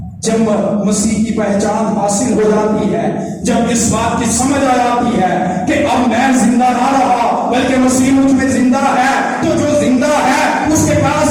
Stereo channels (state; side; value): identical; both; correlation 1.00